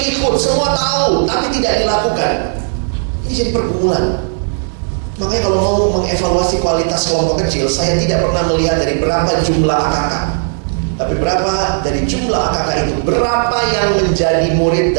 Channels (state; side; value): silent; left; 68 dB below the other